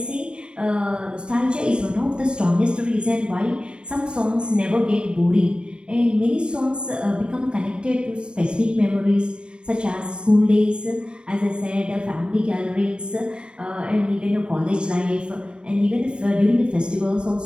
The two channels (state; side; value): late; left; 0.052 ms